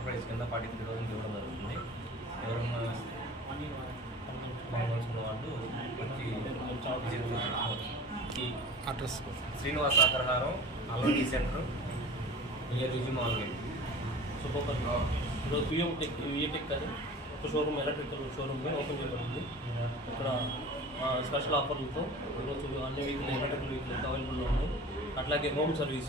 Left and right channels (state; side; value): normal; both; correlation 0.39